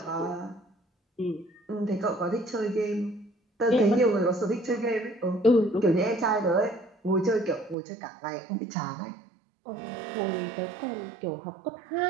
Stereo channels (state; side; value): drops out; left; at 7.8 s